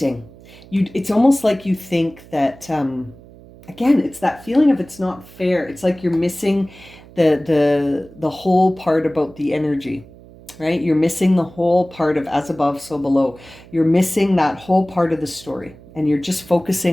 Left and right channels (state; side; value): noise; right; hum, 21 dB below the sound